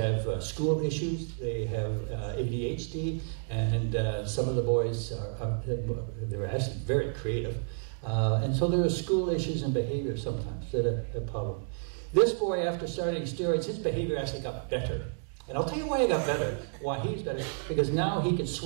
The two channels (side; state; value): left; silent; digital silence